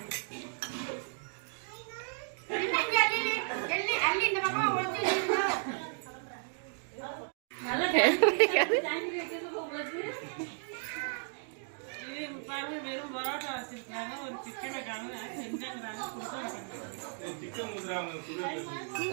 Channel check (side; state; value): left; silent; 55 dB below the other